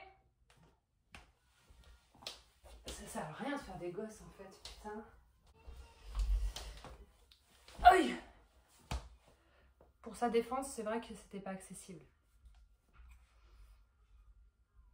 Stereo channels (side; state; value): both; identical; correlation 1.00